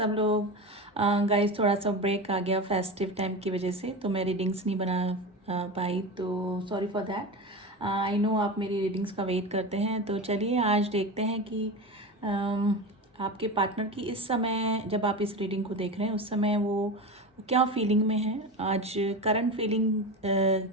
लोग। गाइस थोड़ा सा ब्रेक आ गया फेस्टिव टाइम की वजह से, तो मैं रीडिंग्स नहीं बना पाई, तो sorry for that. I know आप मेरी रीडिंग्स का वेट करते हैं, तो चलिए आज देखते हैं कि आपके पार्टनर की इस समय, जब आप इस रीडिंग को देख रहे हैं उस समय वो क्या फीलिंग में है। आज करंट फीलिंग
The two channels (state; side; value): normal; both; correlation 0.24